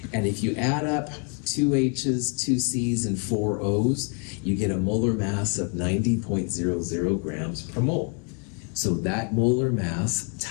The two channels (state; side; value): quieter; right; 39.5 dB